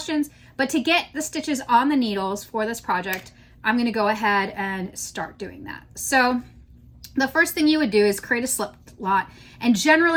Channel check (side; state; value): both; identical; correlation 1.00